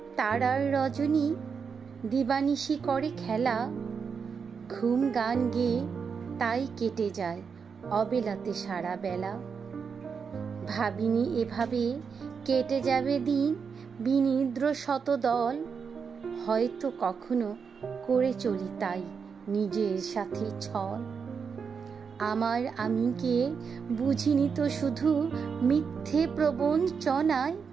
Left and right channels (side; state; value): left; quieter; 6.0 dB